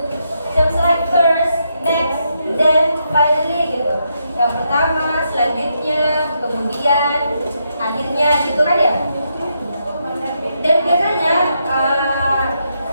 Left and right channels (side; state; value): both; inverted; correlation -0.80